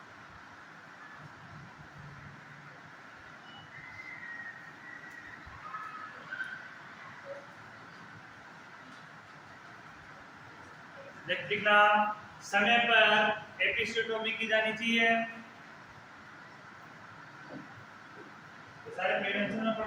लिखना, समय पर एपिसियोटोमी की जानी चाहिए। सारे प्रेवेंशन में पढ़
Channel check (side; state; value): both; identical; correlation 1.00